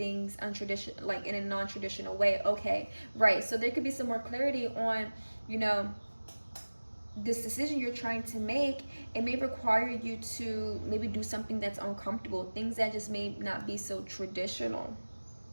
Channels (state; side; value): inverted; both; correlation -1.00